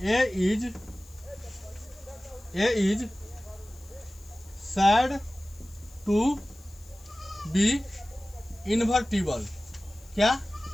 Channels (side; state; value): left; noise; hiss, 25 dB below the sound